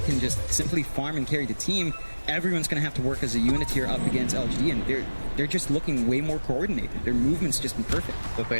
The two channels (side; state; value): both; inverted; correlation -1.00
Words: can just simply farm and carry the team. Everyone's going to have to work as a unit here up against LGD, and they're just looking way more coordinated. Their movement's just been perfect. But they